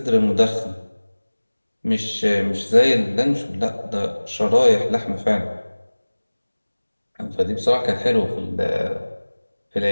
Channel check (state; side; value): inverted; both; correlation -1.00